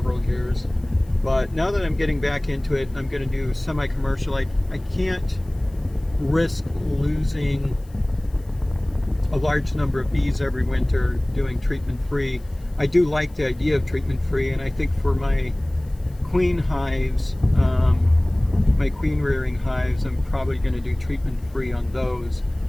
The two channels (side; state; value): left; noise; hiss, 29 dB below the sound